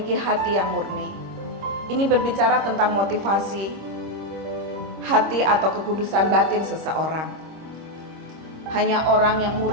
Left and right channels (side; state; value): left; late; 26 ms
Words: hati yang murni. Ini berbicara tentang motivasi hati atau kekudusan batin seseorang. Hanya orang yang